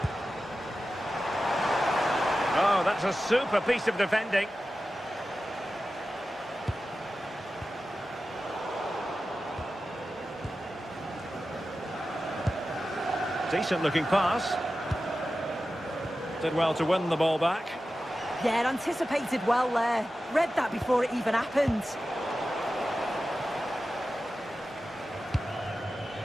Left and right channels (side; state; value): both; normal; correlation 0.93